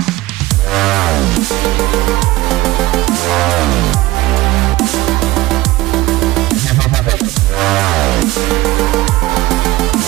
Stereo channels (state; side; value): quieter; left; 18.4 dB